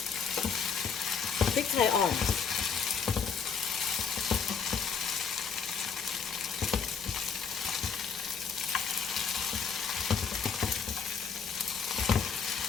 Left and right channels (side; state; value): right; quieter; 6.3 dB